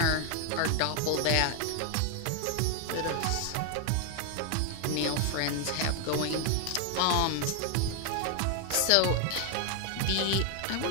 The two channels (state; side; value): different; both; correlation 0.00